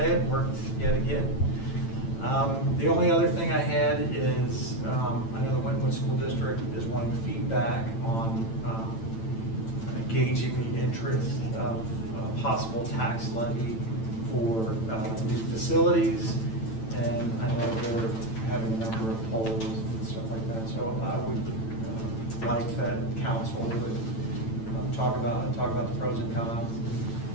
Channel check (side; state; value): right; late; 9.0 ms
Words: it. Worked yet again. The only other thing I had is I know the Wynwood School District is wanting feedback on gauging the interest of possible tax levy for new facilities, and I know they're having a number of polls and stuff like that. So I would like that council would talk about the pros and cons.